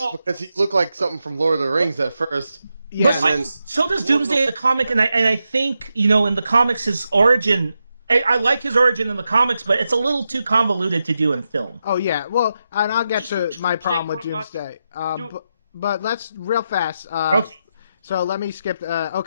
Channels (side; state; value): both; inverted; correlation -0.87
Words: because he looked like something from Lord of the Rings at first. Yeah, But and then- so does Doomsday in the comic, and I think in the comics his origin. I like his origin in the comics, but it's a little too convoluted to do in film. Oh yeah, well, and I'll get to Just my Doomsday problem with pretty much. Doomsday. Do- But let's real fast. Okay. So let me skip.